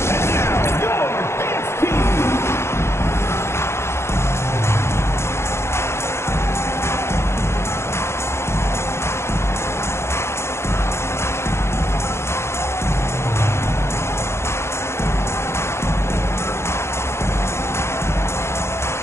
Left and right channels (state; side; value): late; right; 0.13 ms